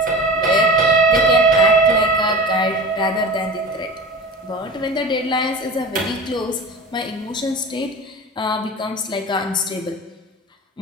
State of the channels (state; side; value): normal; both; correlation 0.33